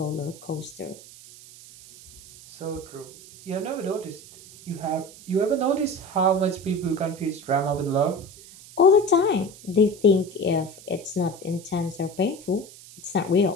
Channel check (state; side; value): noise; right; hiss, 19 dB below the sound